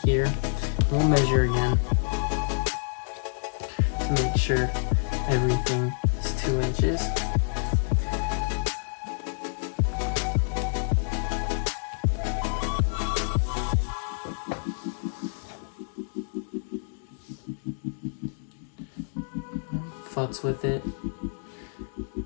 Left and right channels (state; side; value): silent; right; digital silence